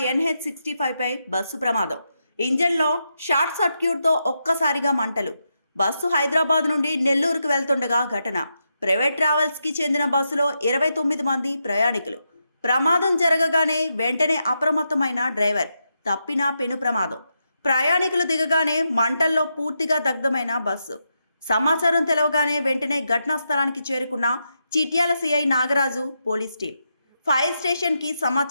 పై బస్సు ప్రమాదం. ఇంజన్లో షార్ట్ సర్క్యూట్తో ఒక్కసారిగా మంటలు. బస్సు హైదరాబాద్ నుండి నెల్లూరుకు వెళ్తుండగా ఘటన. ప్రైవేట్ ట్రావెల్స్కి చెందిన బస్సులో 29 మంది ప్రయాణికులు. ప్రమాదం జరగగానే వెంటనే అప్రమత్తమైన డ్రైవర్. తప్పిన పెను ప్రమాదం. ప్రయాణికులు దిగగానే మంటల్లో పూర్తిగా దగ్ధమైన బస్సు. సమాచారం తెలవగానే వెంటనే ఘటనా స్థలానికి చేరుకున్న Chityal CI Nagaraju, police team. Fire స్టేషన్కి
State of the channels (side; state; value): both; inverted; correlation -0.84